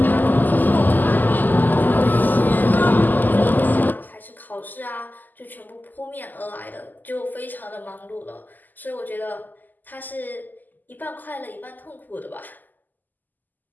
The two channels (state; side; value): late; right; 0.085 ms